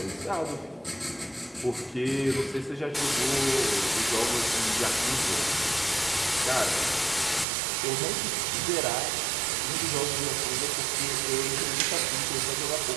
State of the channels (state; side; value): drops out; left; at 7.5 s